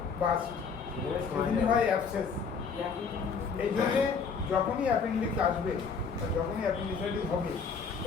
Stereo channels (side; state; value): right; quieter; 5.6 dB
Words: হয় অ্যাবসেস। এই জন্যে যখনই অ্যাপেন্ডিক্স আসবে বা যখনই অ্যাপেন্ডিসাইটিস হবে